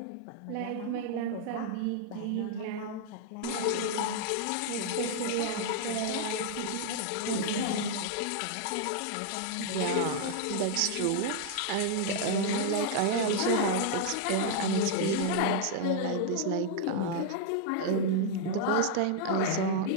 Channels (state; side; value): different; both; correlation -0.01